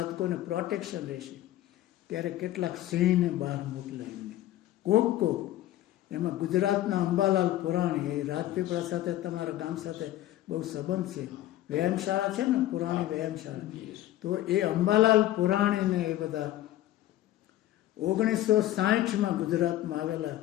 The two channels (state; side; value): quieter; right; 14.2 dB